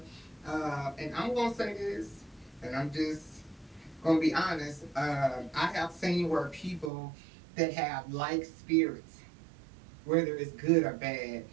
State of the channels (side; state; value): left; drops out; at 6.9 s